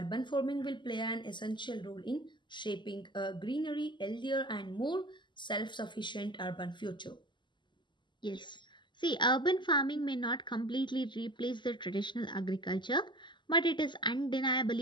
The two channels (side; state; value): right; late; 0.22 ms